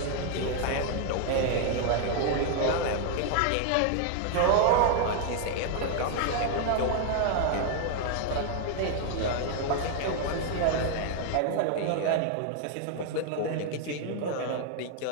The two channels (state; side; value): different; both; correlation 0.00